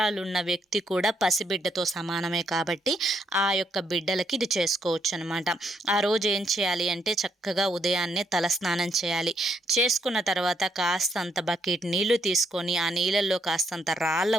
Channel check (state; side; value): normal; both; correlation 0.75